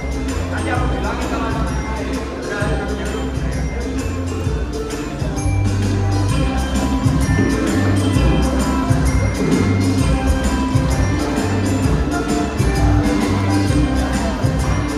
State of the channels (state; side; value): identical; both; correlation 1.00